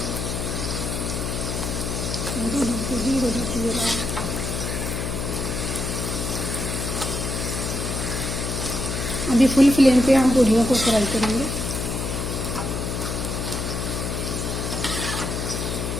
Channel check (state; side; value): noise; left; hum, 2 dB below the sound